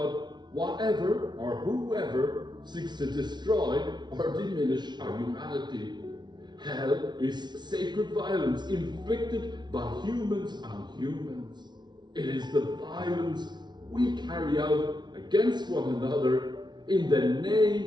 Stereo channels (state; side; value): late; left; 0.20 ms